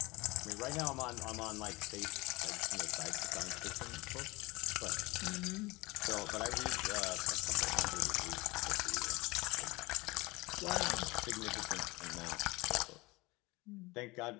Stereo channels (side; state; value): right; quieter; 22.7 dB